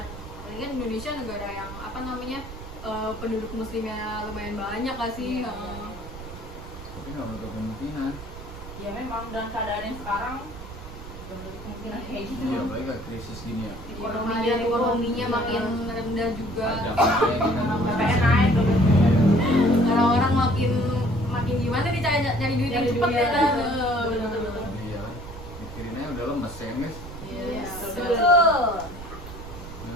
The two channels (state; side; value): noise; right; rumble, 13 dB below the sound